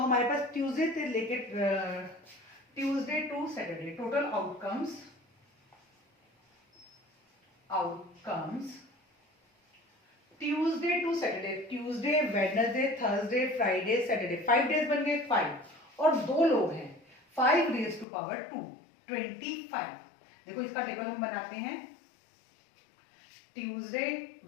पास ट्यूसडे से लेकर Tuesday to Saturday total outcomes Tuesday to Saturday, Tuesday, Wednesday, Thursday, Friday, Saturday, 5 days बन गए 5. और दो लोग हैं, 5 रेज टू पावर 2, 25. देखो इसका टेबल हम बनाते हैं. Tuesday,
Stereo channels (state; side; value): drops out; right; at 18.1 s